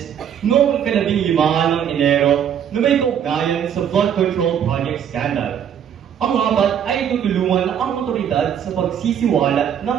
noong 15 ng Enero na may kaugnayan sa flood control project scandal. Ang apat ay tutulungan ang otoridad sa pagsisiwalat ng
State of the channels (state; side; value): quieter; left; 8.9 dB